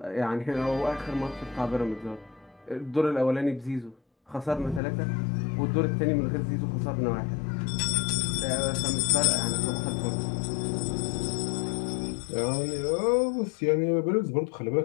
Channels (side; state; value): right; drops out; at 4.8 s